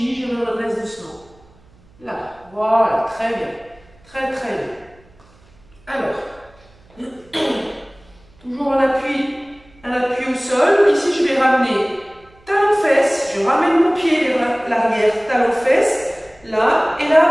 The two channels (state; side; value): noise; right; hum, 29 dB below the sound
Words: je me redresse doucement. Là, voilà, très bien. Très très bien. Alors, toujours un appui au sol. Ici, je vais ramener talon-fesse. Je ramène mon pied vers l'arrière, talon-fesse. Là, et